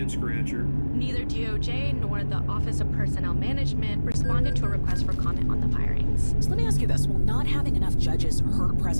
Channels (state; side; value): inverted; both; correlation -1.00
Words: scratcher. Neither DOJ nor the Office of Personnel Management responded to a request for comment on the firings. So let me ask you this. Will not having enough judges hurt